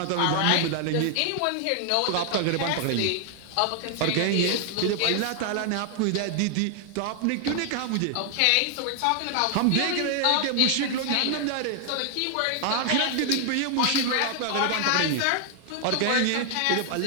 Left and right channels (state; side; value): different; both; correlation 0.00